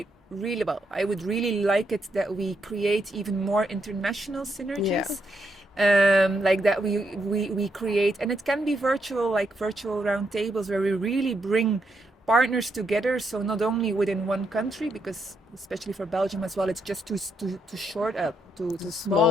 really, well, I would really like it that we create even more international synergies. Like that we create, and it can be virtual, like virtual roundtables where we really bring partners together. So not only within one country, because especially for Belgium as well, it's just too short, too small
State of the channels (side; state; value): both; normal; correlation 0.79